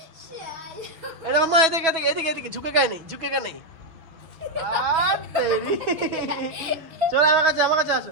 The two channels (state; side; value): late; left; 6.4 ms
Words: এটা মা, এদিকে এদিকে এদিকে এদিকে, ঝুঁকে গায়ে নেই, ঝুঁকে গায়ে নেই। চলো আমার কাছে, আমার কাছে